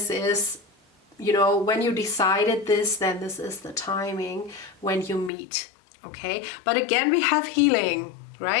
is, you know, when you decided this, then this is the timing when you meet. Okay, but again, we have healing,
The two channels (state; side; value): drops out; right; at 5.3 s